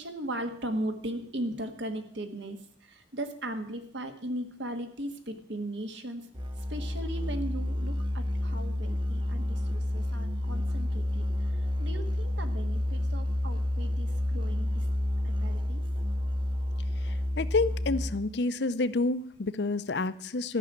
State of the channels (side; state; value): both; normal; correlation 0.75